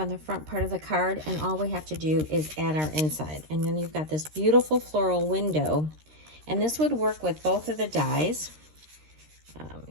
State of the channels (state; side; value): late; left; 13 ms